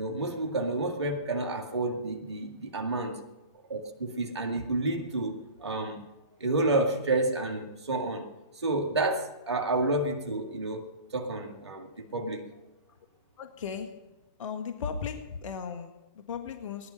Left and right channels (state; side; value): inverted; both; correlation -0.37